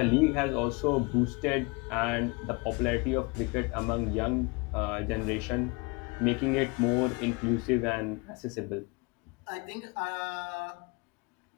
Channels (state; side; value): quieter; right; 28.1 dB